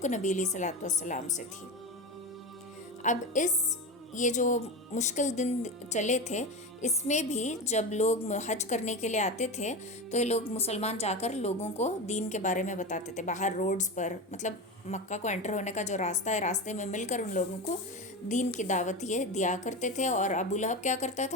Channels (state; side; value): normal; both; correlation 0.21